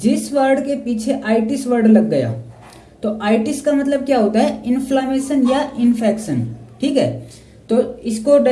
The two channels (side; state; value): both; identical; correlation 1.00